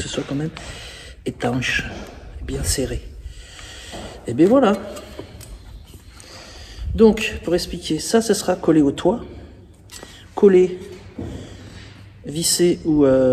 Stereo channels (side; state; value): both; identical; correlation 1.00